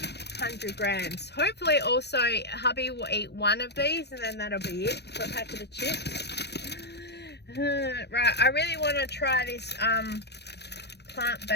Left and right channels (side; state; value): right; late; 0.49 ms